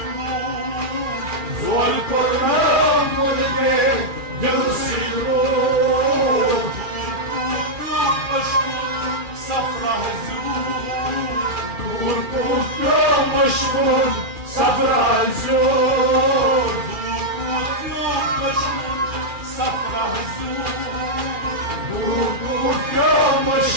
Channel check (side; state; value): left; late; 2.4 ms